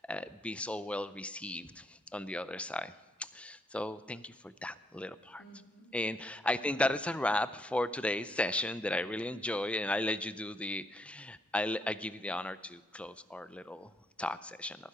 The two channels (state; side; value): normal; both; correlation 0.73